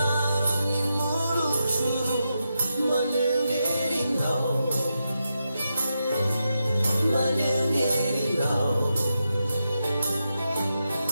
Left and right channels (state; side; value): inverted; both; correlation -0.87